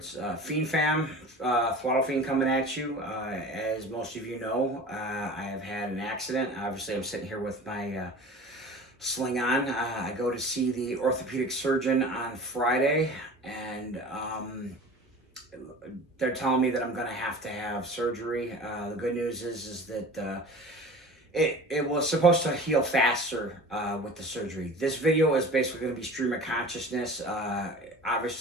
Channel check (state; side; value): normal; both; correlation 0.38